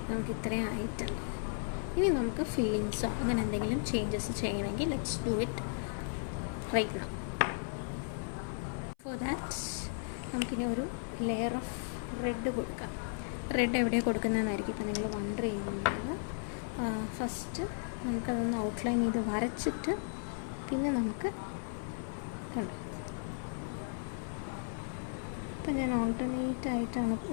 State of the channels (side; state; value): right; silent; 54 dB below the other